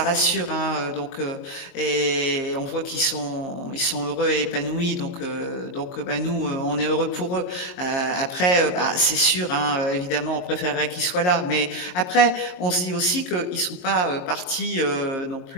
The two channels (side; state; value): right; late; 22 ms